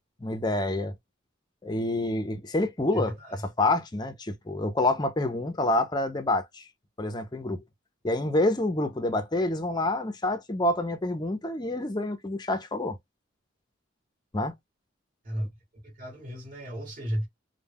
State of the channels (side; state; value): both; normal; correlation 0.40